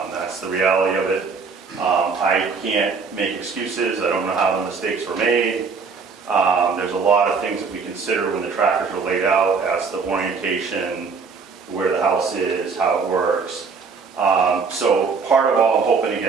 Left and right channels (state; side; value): quieter; left; 5.1 dB